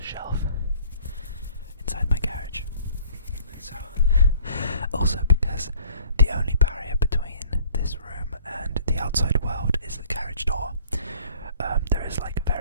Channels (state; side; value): inverted; both; correlation -0.54